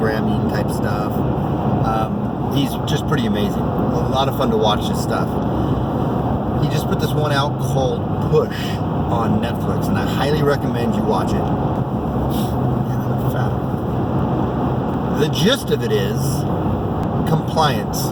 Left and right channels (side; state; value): both; identical; correlation 1.00